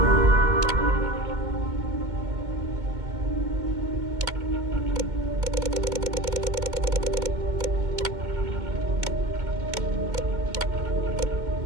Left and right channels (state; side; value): late; left; 2.2 ms